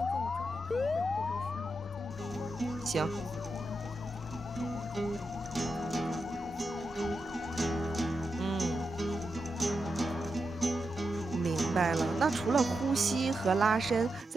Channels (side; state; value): both; normal; correlation 0.87